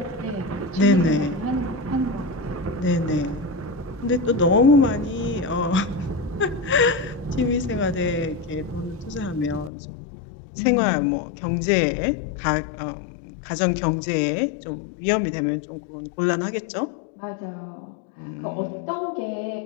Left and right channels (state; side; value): drops out; right; at 9.7 s